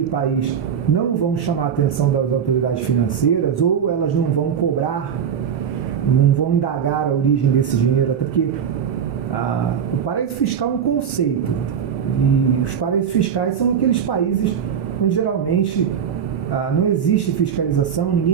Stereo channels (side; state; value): left; quieter; 7.9 dB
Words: país, não vão chamar a atenção das autoridades financeiras, ou elas não vão cobrar, não vão indagar a origem desse dinheiro, até porque o paraíso fiscal é um conceito, e os paraísos fiscais são aqueles países onde geralmente não existe fiscalização,